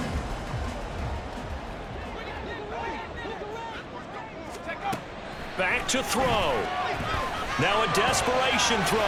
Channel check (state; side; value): identical; both; correlation 1.00